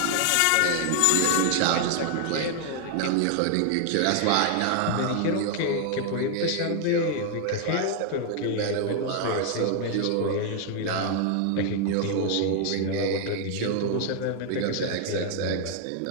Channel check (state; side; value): different; both; correlation 0.00